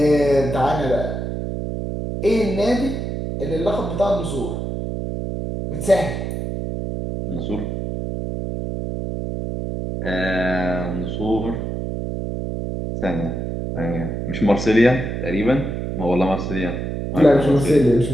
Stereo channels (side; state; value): right; noise; hum, 4 dB below the sound